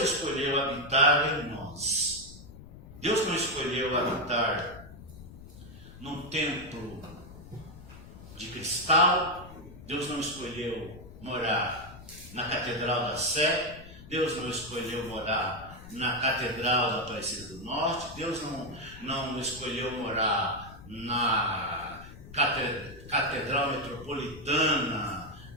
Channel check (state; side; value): noise; left; rumble, 16 dB below the sound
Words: escolheu habitar em nós. Deus não escolheu habitar num templo de cristal. Deus não escolheu morar na Catedral da Sé. Deus não escolheu morar na Catedral da Aparecida do Norte. Deus não escolheu morar na Catedral Metropolitana